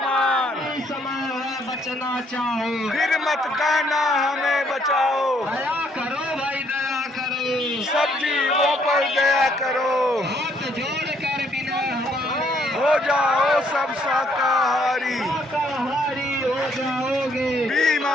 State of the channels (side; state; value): both; normal; correlation 0.68